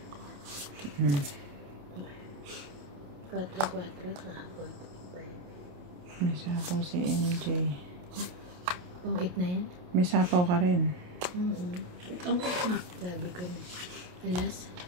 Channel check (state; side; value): late; left; 28 ms